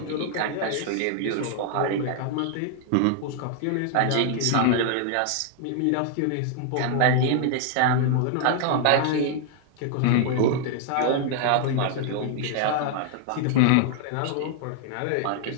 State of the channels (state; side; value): different; both; correlation 0.00